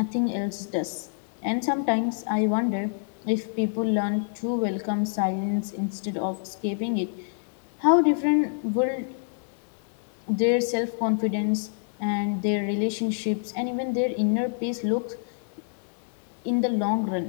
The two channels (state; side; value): silent; right; digital silence